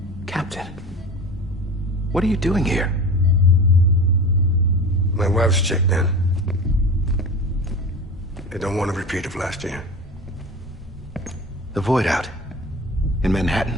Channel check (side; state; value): both; normal; correlation 0.33